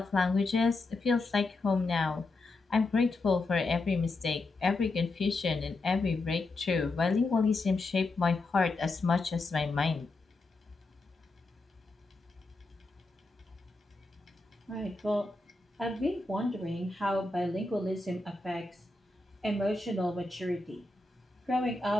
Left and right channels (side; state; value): right; quieter; 3.2 dB